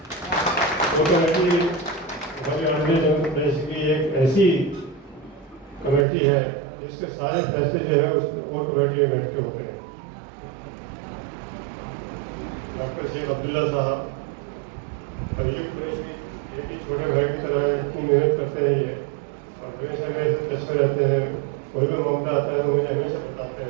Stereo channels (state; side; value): drops out; left; at 6.1 s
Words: कोर कमेटी हमारी ऑर्डिनरी जनरल प्रेस की एक ऐसी कमेटी है जिसके सारे फैसले जो है उस कोर कमेटी में बैठ के होते हैं। डॉक्टर सैयद अब्दुल्ला साहब, अयूब कुरैशी, ये भी छोटे भाई की तरह इतनी मेहनत करते हैं ये, और हमेशा मेरे से टच में रहते हैं। कोई भी मामला आता है तो मुझे हमेशा बताते